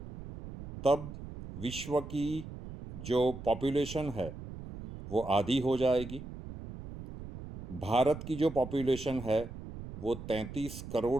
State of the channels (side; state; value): right; noise; rumble, 11 dB below the sound